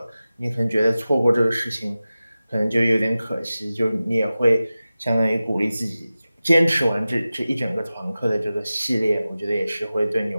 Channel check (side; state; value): both; inverted; correlation -0.95